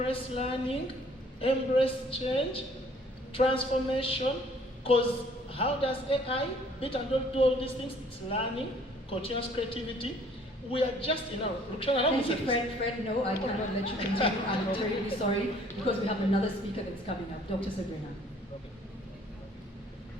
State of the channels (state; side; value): normal; both; correlation 0.58